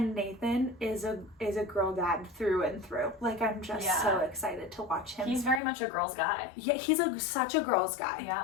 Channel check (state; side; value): drops out; right; at 5.6 s